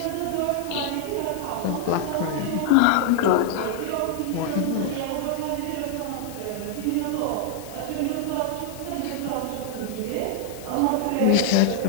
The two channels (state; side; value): different; both; correlation 0.00